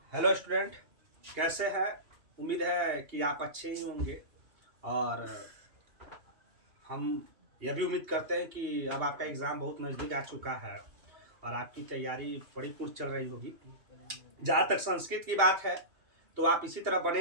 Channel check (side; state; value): left; late; 2.8 ms